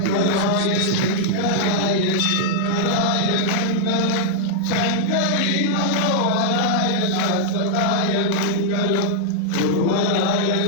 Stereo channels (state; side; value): different; both; correlation -0.01